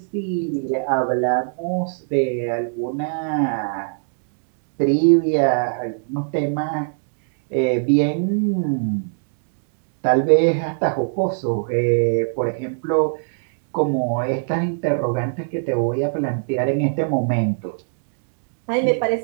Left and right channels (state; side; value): silent; left; digital silence